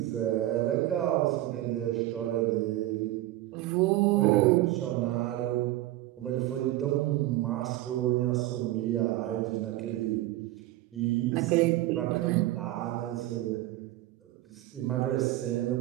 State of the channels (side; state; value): left; quieter; 15.9 dB